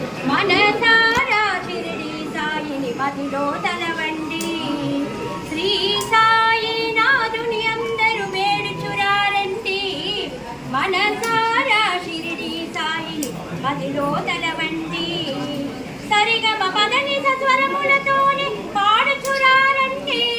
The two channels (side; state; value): both; identical; correlation 1.00